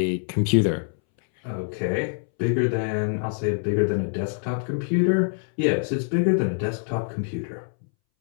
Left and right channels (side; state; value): right; silent; 62 dB below the other